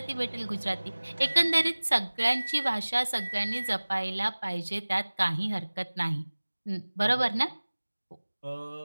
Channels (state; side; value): inverted; both; correlation -1.00